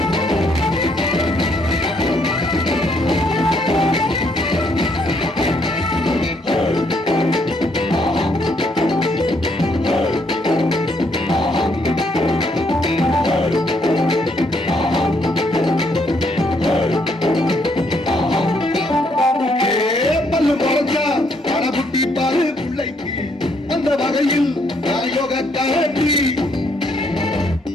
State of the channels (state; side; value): normal; both; correlation 0.70